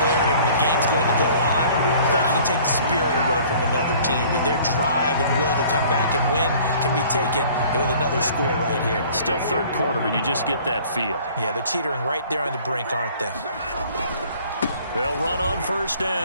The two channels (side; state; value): both; inverted; correlation -0.52